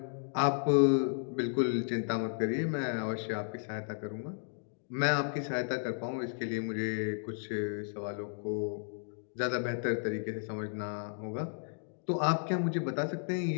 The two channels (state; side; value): silent; right; digital silence